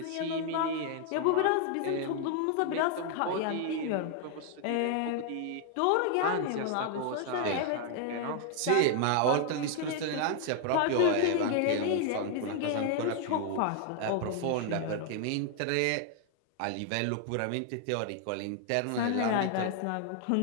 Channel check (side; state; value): both; different; correlation 0.00